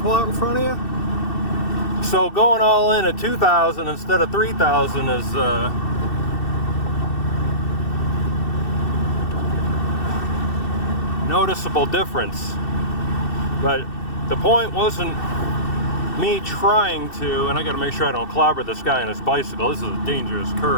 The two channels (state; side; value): late; right; 2.7 ms